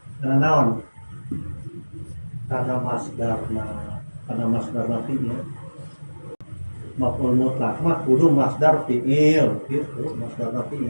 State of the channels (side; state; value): both; inverted; correlation -1.00